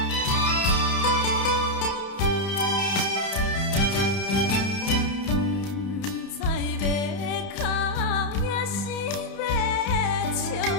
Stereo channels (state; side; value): late; right; 31 ms